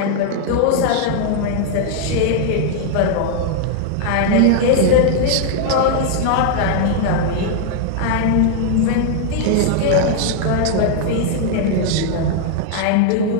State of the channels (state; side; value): different; both; correlation 0.00